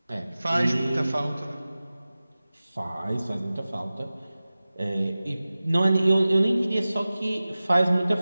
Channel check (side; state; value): both; inverted; correlation -0.97